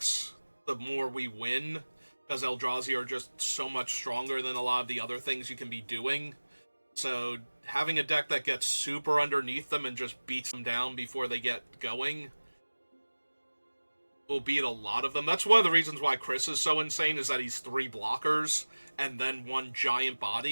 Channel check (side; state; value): both; inverted; correlation -1.00